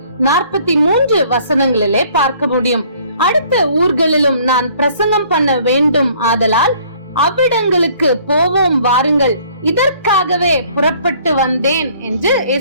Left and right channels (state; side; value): inverted; both; correlation -0.57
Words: வசனங்களிலே பார்க்க முடியும். அடுத்த ஊர்களிலும் நான் பிரசங்கம் பண்ண வேண்டும், ஆதலால் அவ்விடங்களுக்கு போவோம் வாருங்கள், இதற்காகவே புறப்பட்டு வந்தேன் என்று